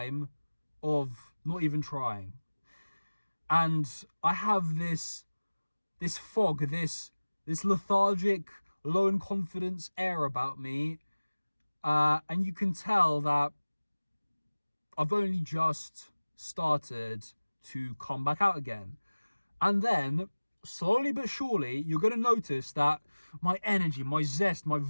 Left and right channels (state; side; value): inverted; both; correlation -1.00